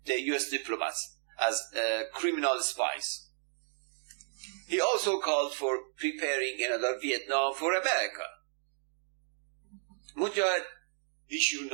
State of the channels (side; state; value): left; silent; digital silence